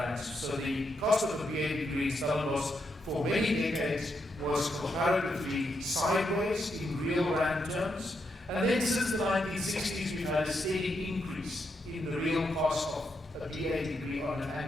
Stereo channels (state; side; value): normal; both; correlation 0.81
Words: So the cost of a BA degree in Stellenbosch for many decades was comparatively sideways in real rand terms. And then since the 1960s, we've had a steady increase in the real cost of a BA degree on an